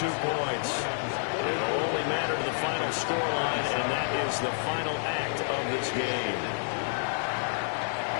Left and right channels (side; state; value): right; silent; digital silence